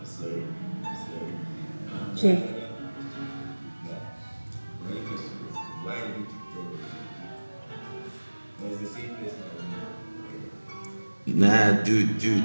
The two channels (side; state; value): both; inverted; correlation -1.00